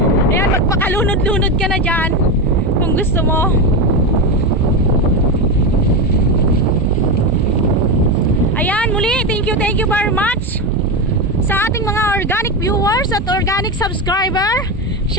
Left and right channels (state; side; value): normal; both; correlation 0.15